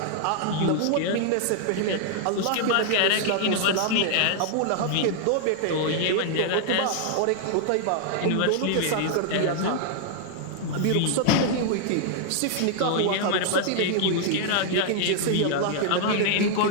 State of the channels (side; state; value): both; different; correlation 0.00